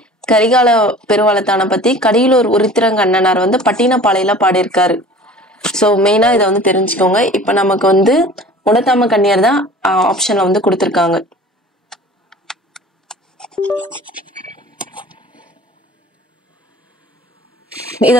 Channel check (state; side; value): normal; both; correlation 0.44